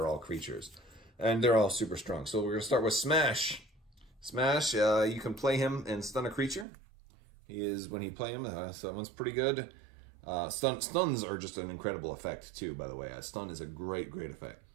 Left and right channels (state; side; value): drops out; left; at 6.7 s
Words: all creatures, and they're all super strong. So we're gonna start with Smash. Smash, you can play him and stun a creature. When you play him, so that one's pretty good. Stuns are just an incredible effect too, by the way. Stun is a great effect.